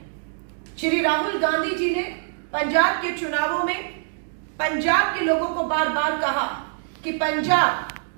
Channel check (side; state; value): left; silent; digital silence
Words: श्री राहुल गांधी जी ने पंजाब के चुनावों में पंजाब के लोगों को बार बार कहा कि